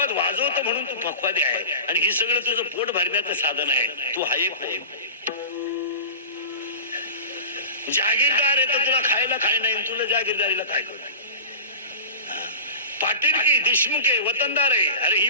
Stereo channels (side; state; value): both; inverted; correlation -0.33